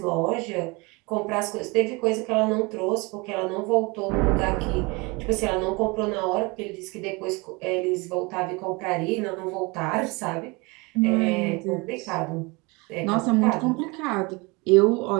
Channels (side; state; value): left; quieter; 26.6 dB